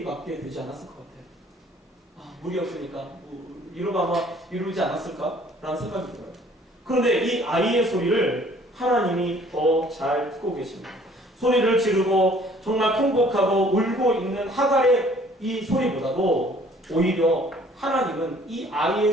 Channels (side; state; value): both; normal; correlation 0.56